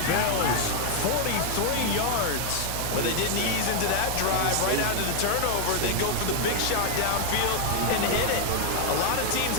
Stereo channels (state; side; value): different; both; correlation 0.00